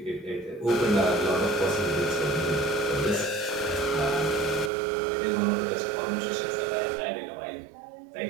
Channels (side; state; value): left; drops out; at 4.7 s